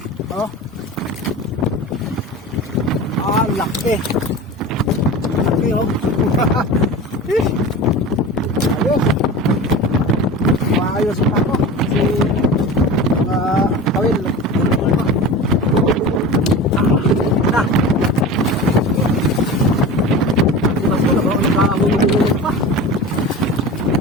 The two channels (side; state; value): both; normal; correlation 0.32